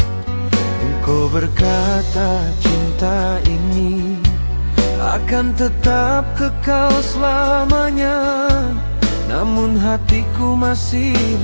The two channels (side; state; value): both; inverted; correlation -1.00